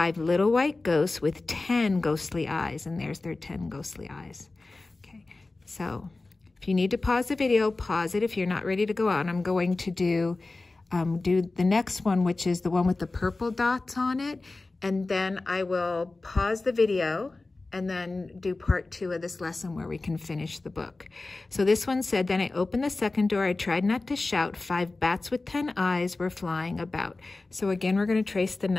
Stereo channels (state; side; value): quieter; right; 3.3 dB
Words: little white ghosts with 10 ghostly eyes. And there's their 10 ghostly eyes. Okay, so if you need to pause the video, pause it if you're not ready to go on. I'm going to do the next one, which is the one with the purple dots on it. And then I will pause the video and then do part 2 of this lesson where we can finish the book. So this one said, then I opened the second door. I tried not to shout. 5 bats with 10 eyes were flying about. So again, we're going to trace the